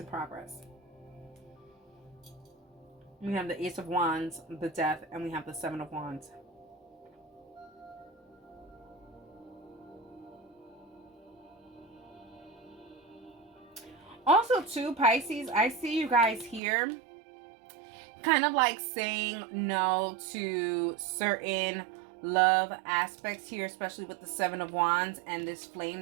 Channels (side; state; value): left; drops out; at 16.6 s